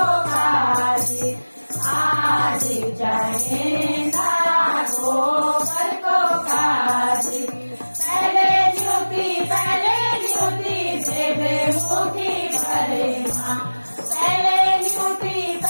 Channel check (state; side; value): inverted; both; correlation -1.00